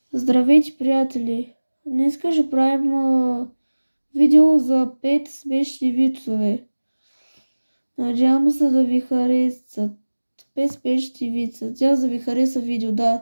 Здравейте, приятели! Днес ще правим видео за 5 смешни вицове. Надявам се да ви харесат. 5 смешни вица. Надявам да ви хареса видео,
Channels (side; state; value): both; inverted; correlation -1.00